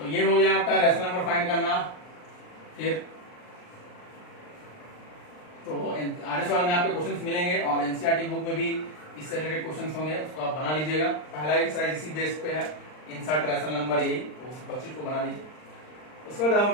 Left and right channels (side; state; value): right; late; 39 ms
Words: ये हो गया आपका रैशनल नंबर फाइंड करना। फिर तो आरएस वाले में आपके क्वेश्चंस मिलेंगे और एनसीईआरटी बुक में भी इससे रिलेटेड क्वेश्चंस होंगे, उसको आप बना लीजिएगा। पहला एक्सरसाइज इसी बेस पे है, इंसर्ट रैशनल नंबर, यही तो उस 25 को बना लीजिए। उसके बाद हम